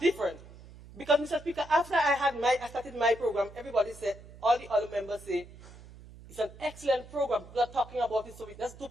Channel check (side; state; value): right; noise; hum, 19 dB below the sound